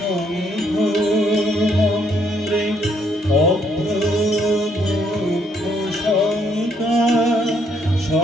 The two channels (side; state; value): both; normal; correlation 0.70